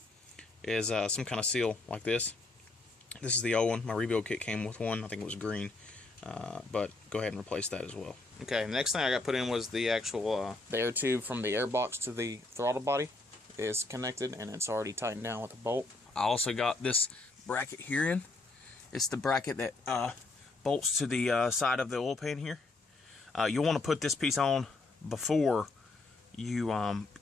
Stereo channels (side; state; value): right; quieter; 3.2 dB